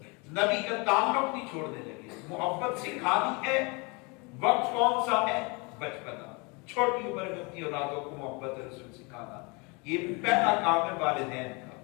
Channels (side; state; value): right; quieter; 29.4 dB